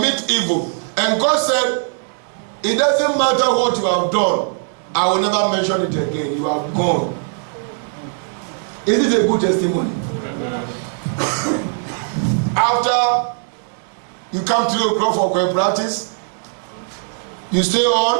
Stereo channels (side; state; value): left; silent; 66 dB below the other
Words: evil, and God said, it doesn't matter what you have done, I will never mention it again. You have gone. Is it a good testimony? After You come 3 o'clock for choir practice. You stay